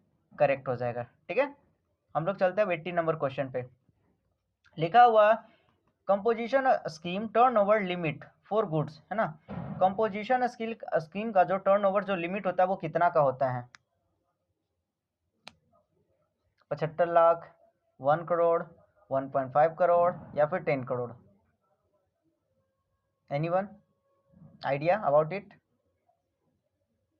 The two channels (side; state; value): both; identical; correlation 1.00